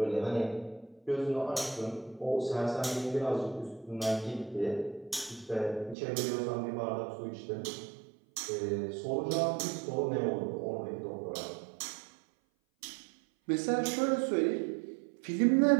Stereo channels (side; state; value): left; drops out; at 6.0 s